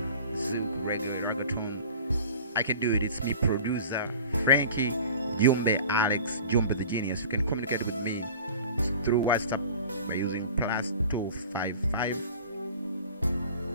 silk, regular, reggaeton, I can do it. It's me, producer Frankie JUMBE, Alex JUMBE the Genius. You can communicate with me through WhatsApp by using +255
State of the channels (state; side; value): inverted; both; correlation -0.42